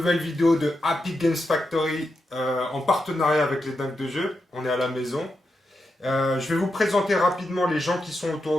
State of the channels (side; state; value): both; normal; correlation 0.86